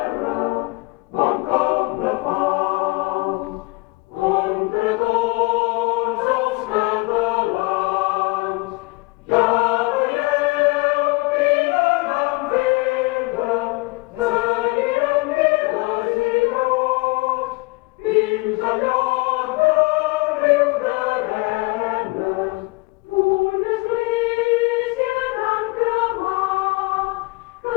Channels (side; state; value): right; quieter; 25.7 dB